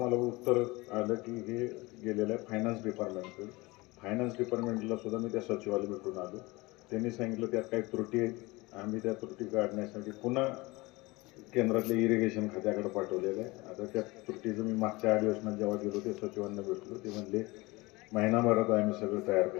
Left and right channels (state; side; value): quieter; right; 22.7 dB